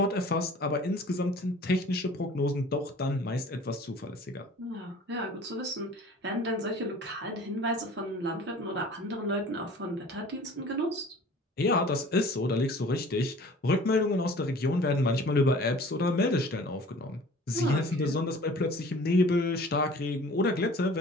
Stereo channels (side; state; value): both; normal; correlation 0.46